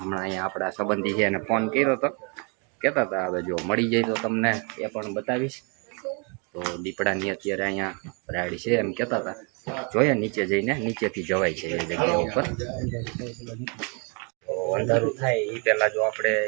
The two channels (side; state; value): left; quieter; 34.7 dB